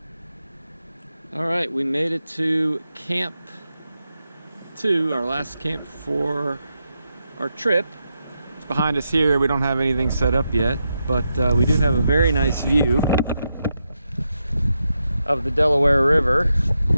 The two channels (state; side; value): inverted; both; correlation -0.86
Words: All right, we made it to Camp 2, our last camp for our trip. It's behind us here. We don't have anything set up yet, but we do have a very nice view of the Delaware River.